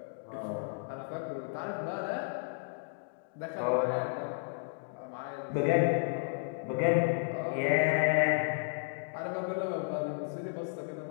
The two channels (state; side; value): silent; right; digital silence